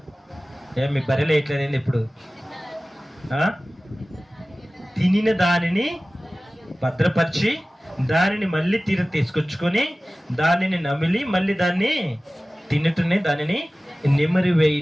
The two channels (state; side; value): normal; both; correlation 0.97